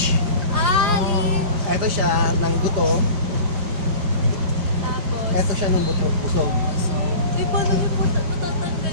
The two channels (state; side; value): late; left; 4.9 ms